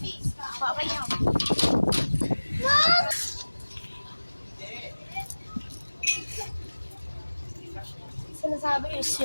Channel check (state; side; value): inverted; both; correlation -1.00